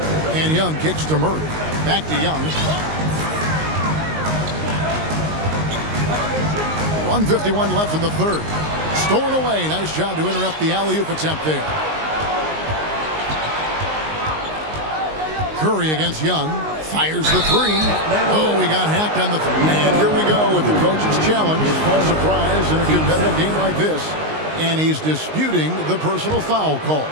And Young kicks to Murray. Back to Young. 1:51 left in the third. Stolen away. Nice job to interrupt the alley-oop attempt there. Curry against Young. Fires the 3. Oh, we got hacked on the 3. And here we go with the coach's challenge. A surprise in a competitive game like this. And he's disputing the personal foul call.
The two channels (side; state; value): left; late; 19 ms